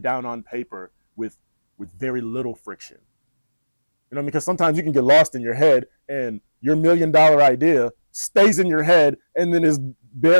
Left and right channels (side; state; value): both; inverted; correlation -1.00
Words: on paper with very little friction. Because sometimes you can get lost in your head and your $1 million idea stays in your head and then is